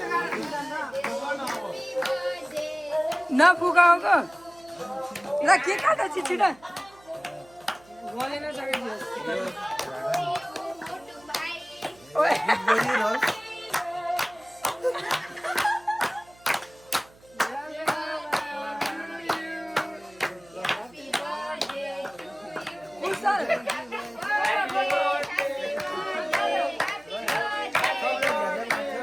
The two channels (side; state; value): right; noise; hum, 27 dB below the sound